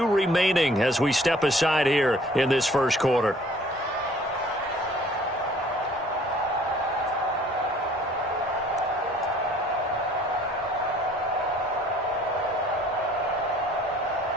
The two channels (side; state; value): both; normal; correlation 0.55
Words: remaining as we step aside here in this first quarter.